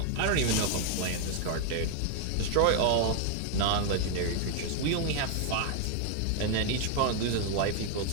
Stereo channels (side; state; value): both; different; correlation 0.00